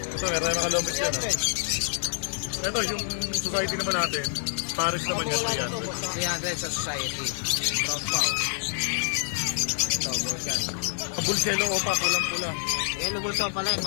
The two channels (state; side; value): silent; right; digital silence